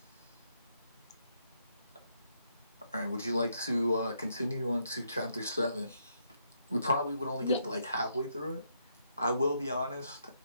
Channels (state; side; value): inverted; both; correlation -0.76